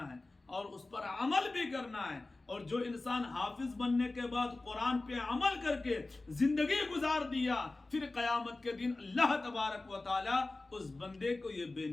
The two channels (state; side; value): quieter; right; 3.2 dB